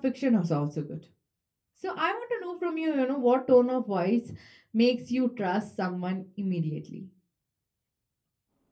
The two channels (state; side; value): identical; both; correlation 1.00